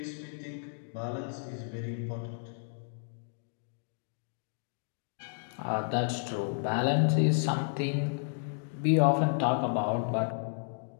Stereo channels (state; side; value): silent; right; digital silence